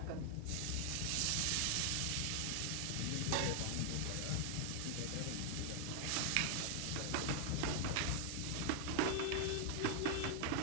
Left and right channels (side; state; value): both; different; correlation 0.00